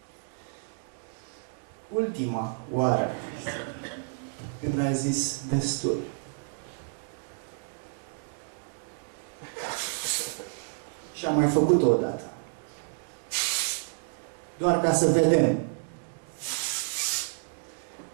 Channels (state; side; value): silent; left; digital silence